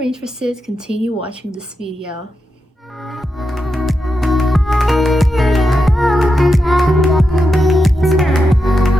continue watching this video.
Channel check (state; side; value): normal; both; correlation 0.87